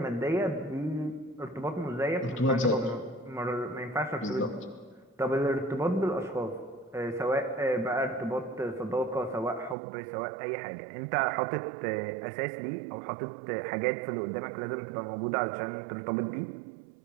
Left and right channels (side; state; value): left; drops out; at 9.8 s